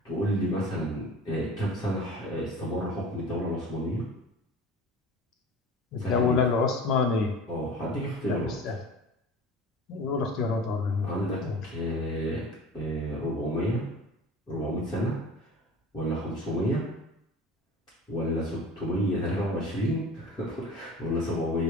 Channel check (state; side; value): normal; both; correlation 0.39